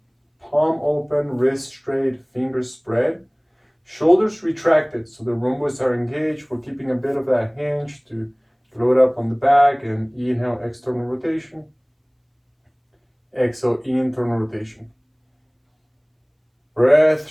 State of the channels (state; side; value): identical; both; correlation 1.00